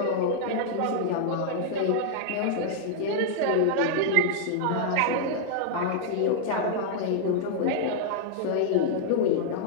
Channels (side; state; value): both; different; correlation -0.01